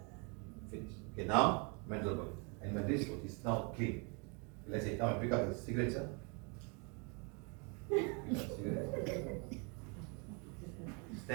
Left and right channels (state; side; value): quieter; left; 33.8 dB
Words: Finish. Okay, now mental body. And mental is now clean. Let's say, come and pick up the cigarette, sir.